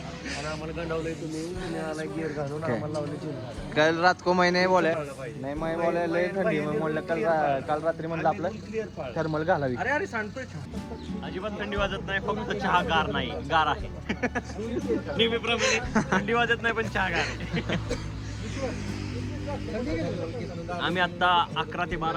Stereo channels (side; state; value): both; identical; correlation 1.00